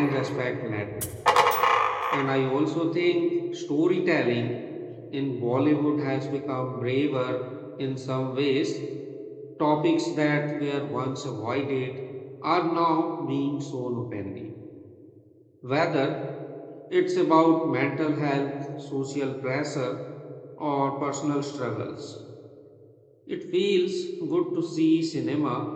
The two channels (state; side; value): identical; both; correlation 1.00